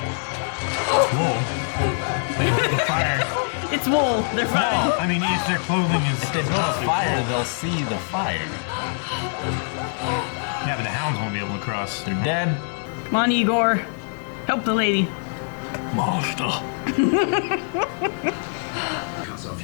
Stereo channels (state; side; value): silent; right; 63 dB below the other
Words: Whoa. They lit the fire. It's wool. They're fine. No, I mean, if their clothing is. If they build a fire, they'll see the fire. Yeah, but the hounds won't be able to cross. They're dead. Come on, Igor. Help the lady. Monster. Cuts